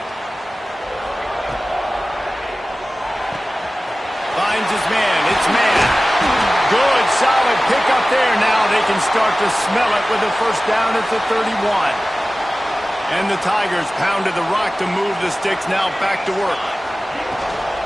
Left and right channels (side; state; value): both; normal; correlation 0.97